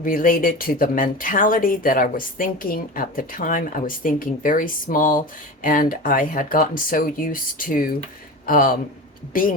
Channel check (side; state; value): both; normal; correlation 0.29